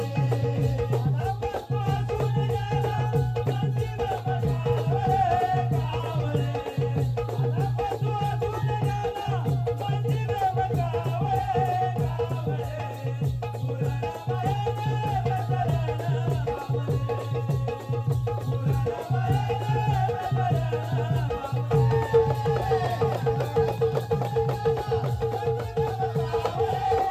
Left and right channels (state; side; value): identical; both; correlation 1.00